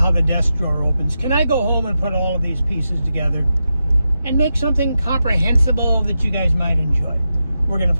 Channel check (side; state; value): both; inverted; correlation -0.88